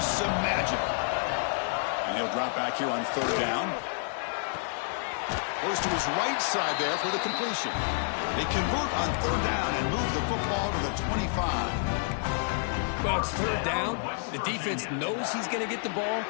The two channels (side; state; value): right; silent; digital silence